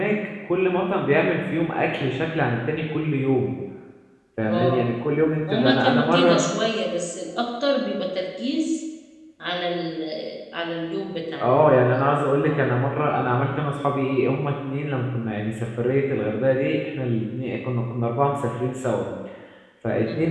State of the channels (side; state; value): both; identical; correlation 1.00